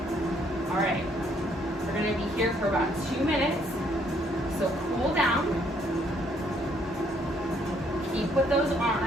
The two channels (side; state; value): both; normal; correlation 0.67